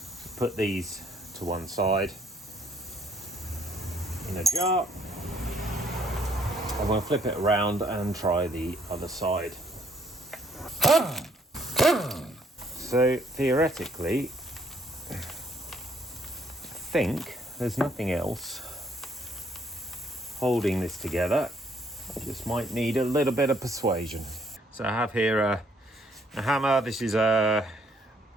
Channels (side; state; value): both; normal; correlation 0.66